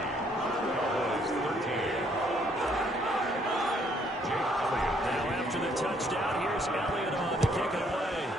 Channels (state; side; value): normal; both; correlation 0.66